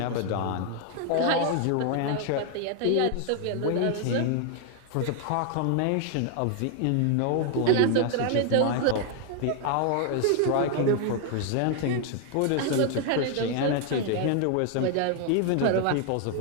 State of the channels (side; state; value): both; different; correlation 0.00